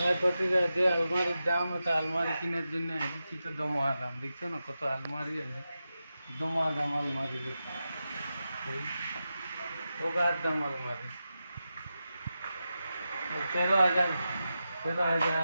প্রতিটা যে আলমারির দাম, এটা আলমারি কেনার জন্য এসেছি তো দমা দাম। দেখছো না কত আলমারি আছে, দমা দাম আলমারি। ওগার দাম আলমারি 13,000,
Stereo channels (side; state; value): both; inverted; correlation -0.91